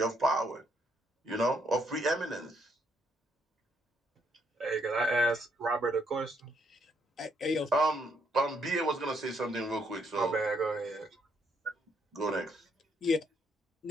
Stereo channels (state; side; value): normal; both; correlation 0.72